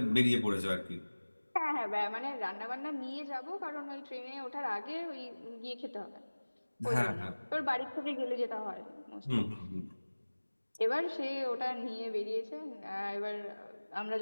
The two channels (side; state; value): both; inverted; correlation -1.00